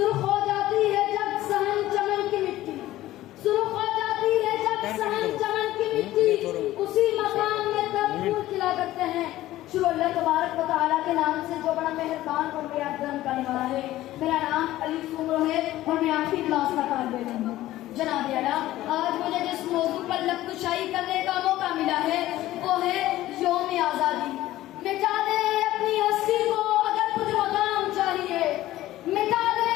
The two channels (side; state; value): right; quieter; 15.3 dB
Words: ہو جاتی ہے جب صحن چمن کی مٹی، سرخ ہو جاتی ہے جب صحن چمن کی مٹی، اسی مقام میں تب پھول کھلا کرتے ہیں۔ شروع اللہ تبارک و تعالیٰ کے نام سے جو بڑا مہربان اور بیاد کرم کرنے والا ہے۔ میرا نام علی سمرو ہے اور میں آخری کلاس کا طالب علم ہوں۔ جناب اعلیٰ، آج مجھے جس موضوع پر لب کشائی کرنے کا موقع ملا ہے وہ ہے یوم آزادی۔ مٹا دے اپنی ہستی کو اگر کچھ مقام چاہیے، مٹا دے